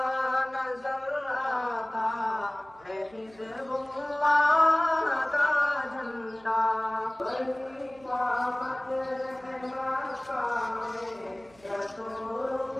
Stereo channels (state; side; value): noise; right; hum, 27 dB below the sound